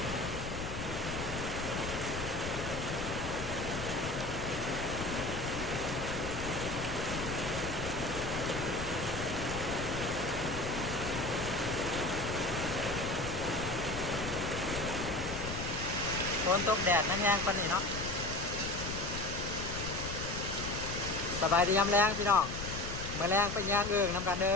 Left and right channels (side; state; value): left; noise; rumble, 7 dB below the sound